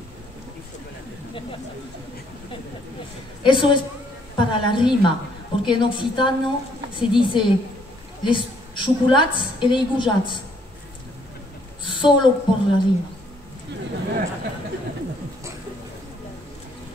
Eso es para la rima, porque en occitano se dice les chocolats et les goujats, solo por la rima.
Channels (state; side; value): normal; both; correlation 0.67